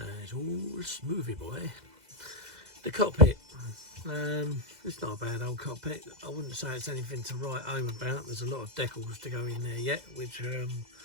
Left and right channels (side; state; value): left; late; 2.0 ms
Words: it's all smoothy, boy. The cockpit, it's not a bad old cockpit. I wouldn't say it's anything to write home about. There's a lot of decals to go in there yet, which